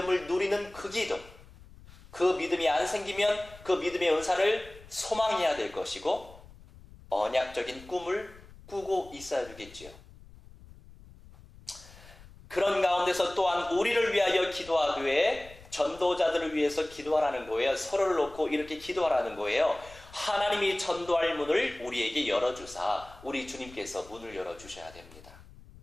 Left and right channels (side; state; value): left; noise; rumble, 21 dB below the sound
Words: 누리는 그 기도, 그 믿음이 안 생기면 그 믿음의 은사를 소망해야 될 것이고 언약적인 꿈을 꾸고 있어야 되겠지요. 그런 가운데서 또한 우리를 위하여 기도하되 전도자들을 위해서 기도하라는 거예요. 서로를 놓고 이렇게 기도하라는 거예요. 하나님이 전도할 문을 우리에게 열어주사 우리 주님께서 문을 열어주셔야 됩니다.